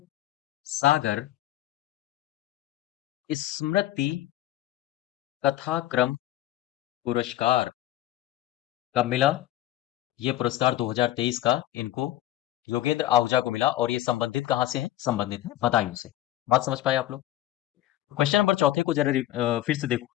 सागर स्मृति कथाक्रम पुरस्कार। कब मिला? ये पुरस्कार 2023 का इनको योगेंद्र आहूजा को मिला और ये संबंधित कहाँ से है? संबंधित है बदायूं से। बात समझ पाए आप लोग? क्वेश्चन नंबर चौथे को जरा फिर से देखो।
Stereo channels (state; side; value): quieter; right; 14.4 dB